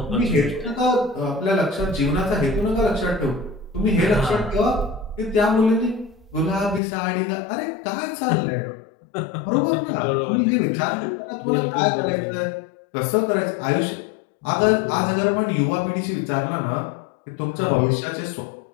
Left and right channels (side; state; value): right; drops out; at 6.8 s